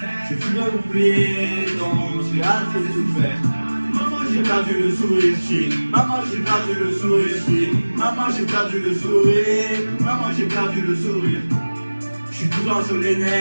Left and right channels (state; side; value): inverted; both; correlation -1.00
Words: j'ai plus l'oublier, donc j'ai assez souffert. Maman j'ai perdu le sourire, maman j'ai perdu le sourire, maman j'ai perdu le sourire, maman j'ai perdu le sourire. Je suis tout dans sur les